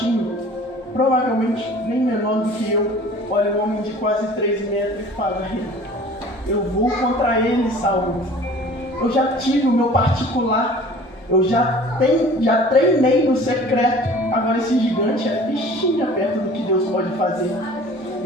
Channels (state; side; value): normal; both; correlation 0.46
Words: provavelmente nem menor do que eu. Olha um homem de quase 3 metros e fala: eu vou contra ele, Saul. Eu já tive o meu particular, eu já treinei no secreto. Agora esse gigante é fichinha perto do que Deus pode fazer.